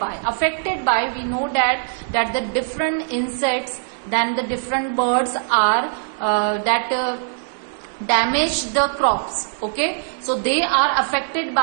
we know that the different insects, then the different birds are damage the crops. Okay, so they are affected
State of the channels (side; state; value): left; silent; digital silence